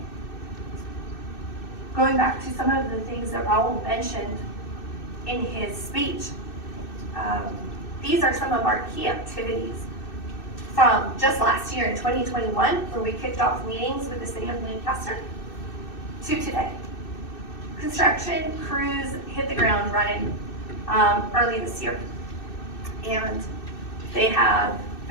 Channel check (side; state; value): right; late; 2.6 ms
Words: Going back to some of the things that Raul mentioned in his speech, These are some of our key activities from just last year in 2021, where we kicked off meetings with the city of Lancaster, to today. Construction crews hit the ground running early this year, and they have